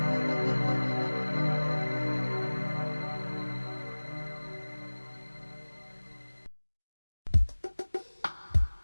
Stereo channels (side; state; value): both; inverted; correlation -1.00